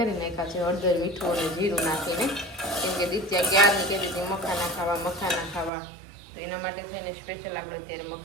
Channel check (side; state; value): left; drops out; at 5.7 s